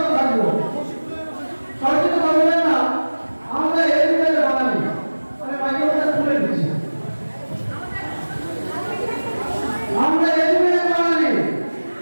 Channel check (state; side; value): inverted; both; correlation -1.00